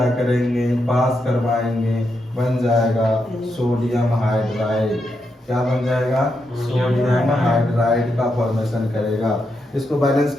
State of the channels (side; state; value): both; normal; correlation 0.83